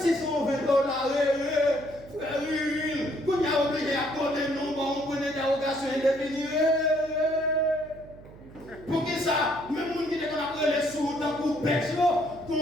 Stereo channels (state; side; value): noise; right; hum, 19 dB below the sound